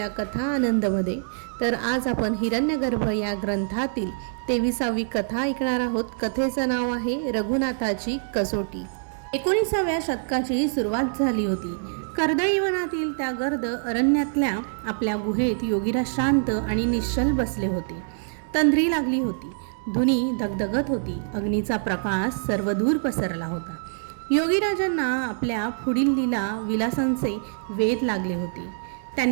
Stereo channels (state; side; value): silent; left; digital silence